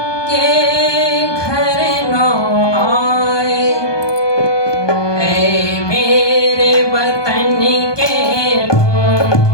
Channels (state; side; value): late; right; 1.2 ms